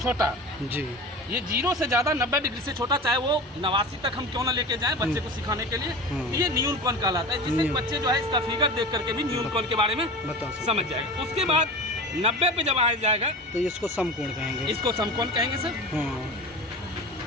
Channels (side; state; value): both; normal; correlation 0.32